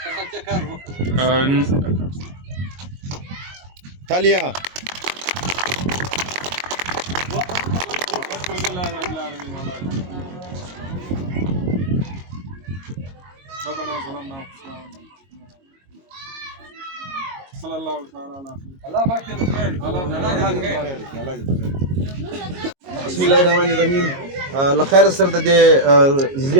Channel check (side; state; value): left; late; 22 ms